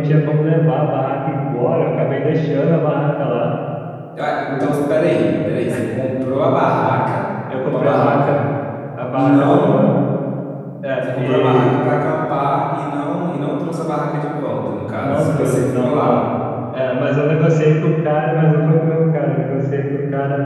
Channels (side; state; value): both; identical; correlation 1.00